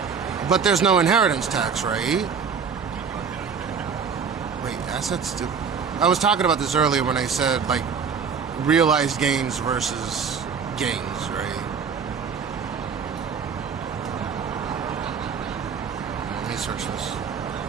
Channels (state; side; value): quieter; left; 6.2 dB